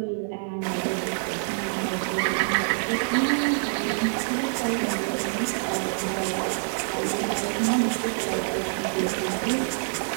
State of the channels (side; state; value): left; silent; digital silence